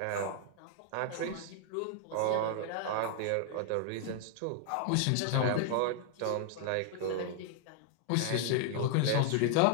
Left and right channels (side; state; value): both; different; correlation 0.00